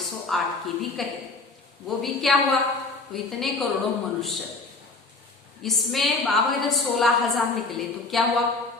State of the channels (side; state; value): right; quieter; 3.6 dB